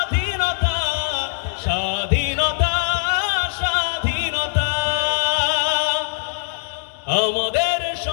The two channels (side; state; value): right; silent; digital silence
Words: স্বাধীনতা, স্বাধীনতা। আমাদের